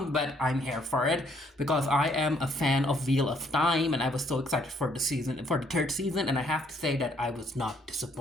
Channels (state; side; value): normal; both; correlation 0.67